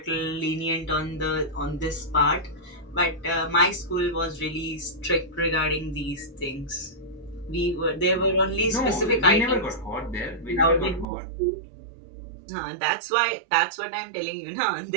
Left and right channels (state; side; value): drops out; left; at 11.1 s